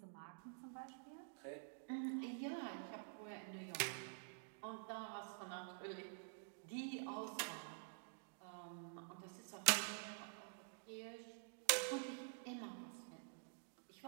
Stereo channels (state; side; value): silent; left; digital silence